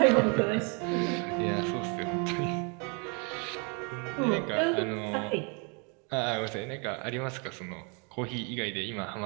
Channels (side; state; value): left; quieter; 35.2 dB